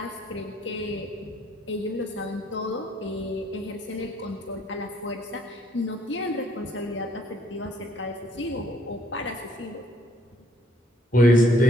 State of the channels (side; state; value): both; normal; correlation 0.65